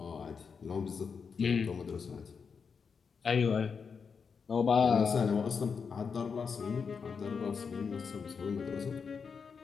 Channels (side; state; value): right; quieter; 5.8 dB